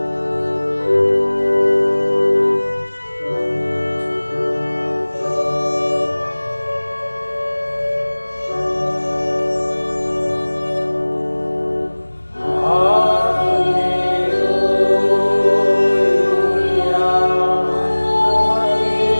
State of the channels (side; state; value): both; inverted; correlation -1.00